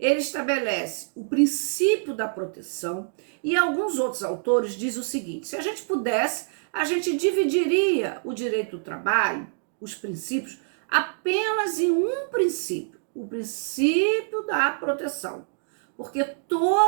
estabelece o princípio da proteção e alguns outros autores dizem o seguinte: se a gente pudesse, a gente dividiria o direito do trabalho, os princípios, apenas em um princípio, o princípio da proteção. Porque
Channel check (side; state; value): left; silent; digital silence